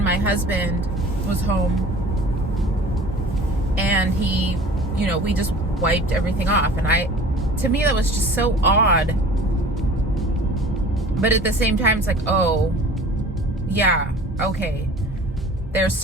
my husband was home, and he, you know, we just wiped everything off, and to me that was just so odd. But at the same time, it's like, oh yeah, okay, there's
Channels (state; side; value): normal; both; correlation 0.44